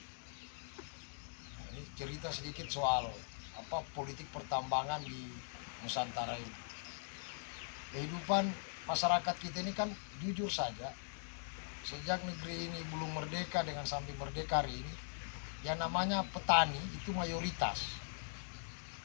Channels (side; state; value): right; silent; digital silence